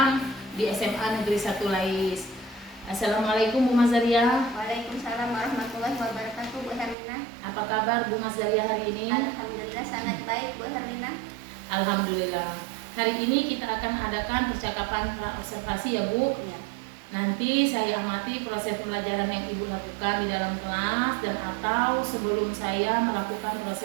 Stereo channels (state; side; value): drops out; left; at 7.0 s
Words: di SMA Negeri 1 Lais. Assalamualaikum Bu Mazaria. Waalaikumsalam warahmatullahi wabarakatuh, Bu Herlina. Apa kabar Bu Mazaria hari ini? Alhamdulillah sangat baik, Bu Herlina. Alhamdulillah. Hari ini kita akan adakan percakapan pra-observasi ya Bu. Ya. Nanti saya amati proses pembelajaran yang Ibu lakukan di dalam kelas dan atau sebelum saya melakukan